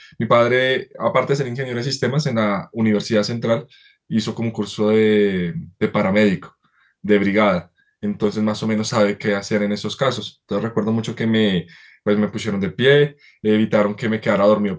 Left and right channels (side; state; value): both; identical; correlation 1.00